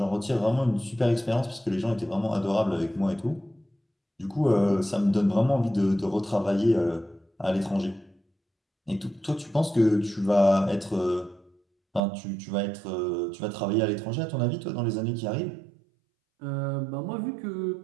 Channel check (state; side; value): drops out; left; at 12.0 s